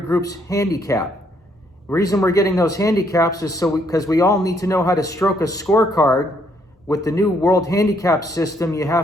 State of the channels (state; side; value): normal; both; correlation 0.70